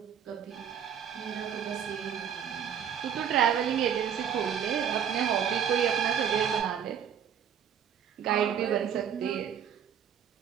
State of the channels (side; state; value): left; quieter; 8.6 dB